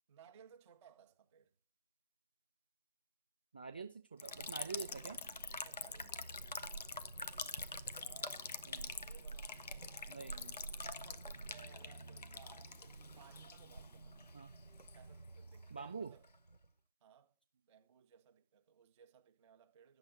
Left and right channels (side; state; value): both; inverted; correlation -0.60